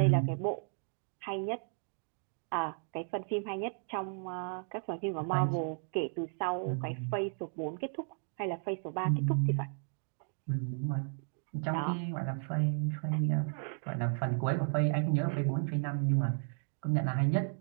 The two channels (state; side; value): silent; left; 55 dB below the other